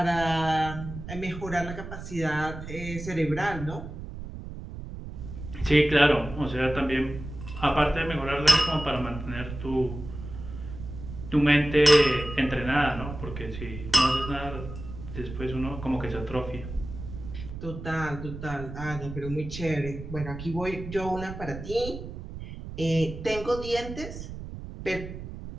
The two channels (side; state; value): right; noise; rumble, 10 dB below the sound